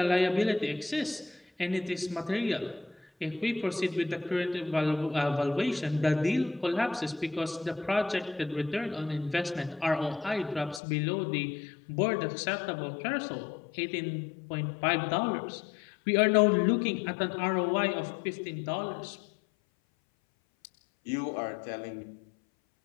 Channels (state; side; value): drops out; right; at 10.8 s